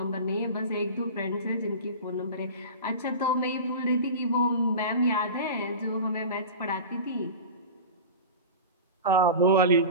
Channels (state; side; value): inverted; both; correlation -0.31